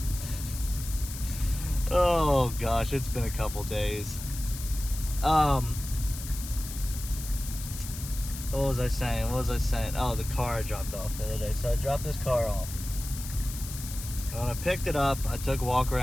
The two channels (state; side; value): noise; left; hiss, 11 dB below the sound